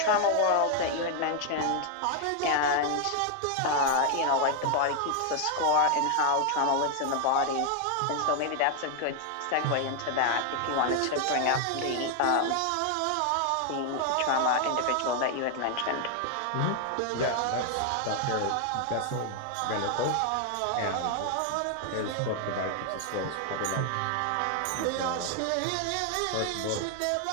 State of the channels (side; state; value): both; different; correlation 0.00